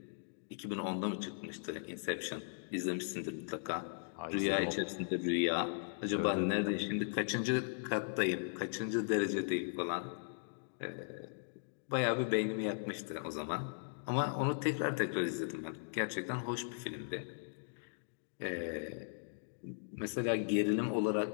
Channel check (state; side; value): silent; right; digital silence